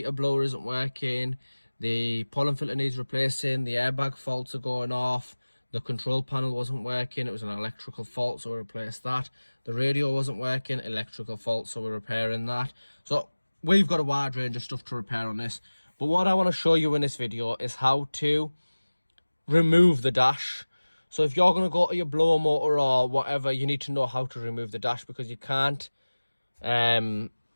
blower isn't working, the pollen filter needs replacing, the airbag faults are going off. The control panel wasn't working, it was an electrical fault, so we replaced that. The radio wasn't working, electrical fault, so we're repairing that. So we've got a wide range of stuff to repair on this. But what I want to show you in this video is how to remove the dash. So if you're going to go to your blower motor or whatever, you need to know how to remove the dash, because you can't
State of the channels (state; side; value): inverted; both; correlation -1.00